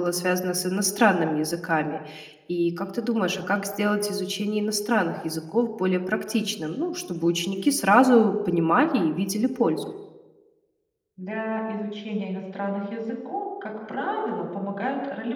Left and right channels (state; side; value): identical; both; correlation 1.00